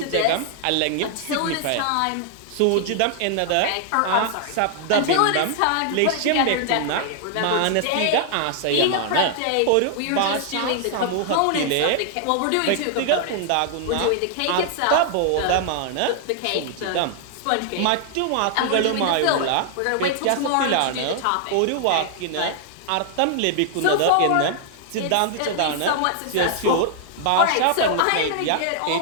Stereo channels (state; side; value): different; both; correlation 0.00